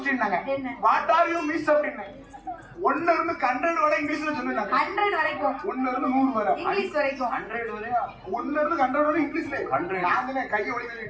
நாங்க வாட் ஆர் யூ மிஸ் அப்படினே 1 இருந்து 100 வரை இங்கிலீஷ்ல சொல்லுங்க 100 வரைக்கும் 1 இருந்து 100 வரை இங்கிலீஷ் வரைக்கும் 100 வரை 1 இருந்து 100 வரை இங்கிலீஷ்ல 100 நானே கையை ஒளி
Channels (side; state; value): both; identical; correlation 1.00